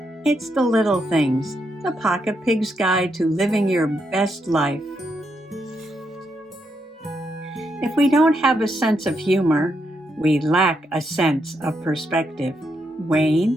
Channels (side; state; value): both; normal; correlation 0.80